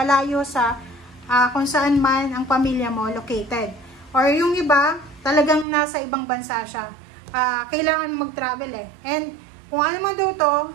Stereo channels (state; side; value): drops out; left; at 5.7 s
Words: sa kung saan man ang pamilya mo located. Or yung iba, talagang nasa ibang bansa siya. Kailangan mag-travel And kung ano man daw to,